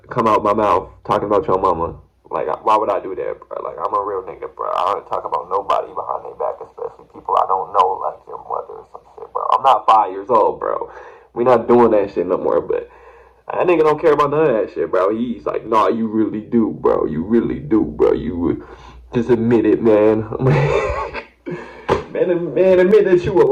come out my mouth talking about your mama. Like, why would I do that, bro? Like, I'm a real nigga, bro. I don't talk about nobody behind their back, especially people I don't know, like your mother or some shit, bro. I'm not 5 years old, bro. We not doing that shit no more, but that nigga don't care about none of that shit, bro. He's like, nah, you really do, bro. You really do, bro. You just admit it, man. man, admit that you a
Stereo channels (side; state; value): both; identical; correlation 1.00